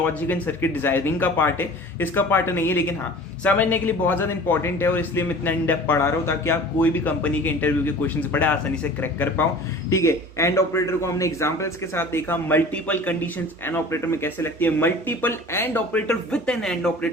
and circuit designing का पार्ट है, इसका पार्ट नहीं है, लेकिन हाँ समझने के लिए बहुत ज्यादा इंपॉर्टेंट है और इसलिए मैं इतना इन डेप्थ पढ़ा रहा हूँ ताकि आप कोई भी कंपनी के इंटरव्यू के क्वेश्चन बड़े आसानी से क्रैक कर पाओ। ठीक है, एंड ऑपरेटर को हमने एग्जांपल्स के साथ देखा, मल्टीपल कंडीशंस एंड ऑपरेटर में कैसे लगती है, multiple and operator with an and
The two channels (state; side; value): normal; both; correlation 0.42